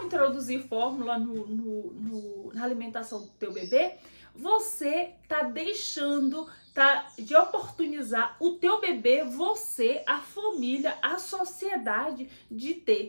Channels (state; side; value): inverted; both; correlation -1.00